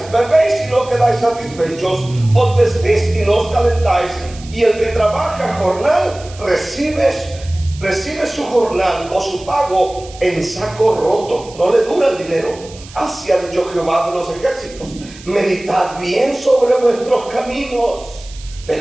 Bebéis y no quedáis satisfechos. Os vestís y no os calentáis. Y el que trabaja jornal recibe su jornal o su pago en saco roto. No le dura el dinero. Así ha dicho Jehová de los ejércitos: meditad bien sobre vuestros caminos.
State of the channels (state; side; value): noise; right; hiss, 19 dB below the sound